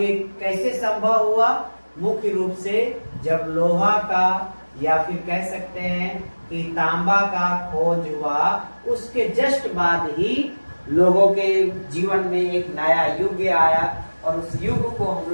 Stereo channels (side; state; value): both; inverted; correlation -1.00